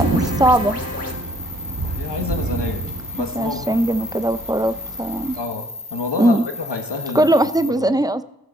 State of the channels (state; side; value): normal; both; correlation 0.64